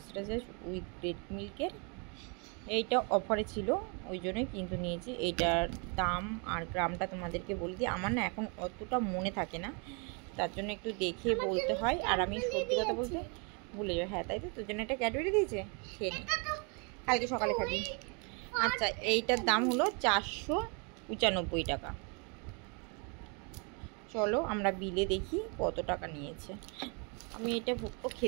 উইথ রেড মিল্কের। এইটা অফারে ছিল, ওই জন্যই কিন্তু নিয়েছি। এইটার দাম আর গ্রামটা তোমাদেরকে বলে দিই। আমার না এখন অতটা মনে থাকে না, তার জন্য একটু দেখে বলতে হয়। আর আমি সত্যি কথা বলতে ভুলে যাই। হ্যাঁ, তাই তো, তোর জন্য একটা ক্যাডবেরি দিয়েছে, খেয়ে নে, কালকে সকালে খাবি। আচ্ছা, এইটার দাম হলো 495 টাকা। চলো আমরা বিলে দেখি কত টাকা নিয়েছে। আমি এটা ভুট্টো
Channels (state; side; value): quieter; left; 34.7 dB